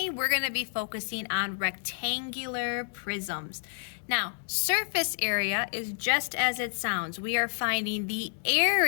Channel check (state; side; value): silent; right; digital silence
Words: we're going to be focusing on rectangular prisms. Now, surface area is just as it sounds. We are finding the